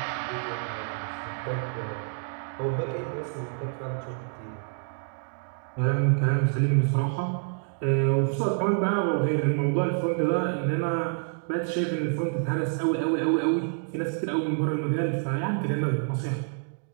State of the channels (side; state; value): left; silent; 59 dB below the other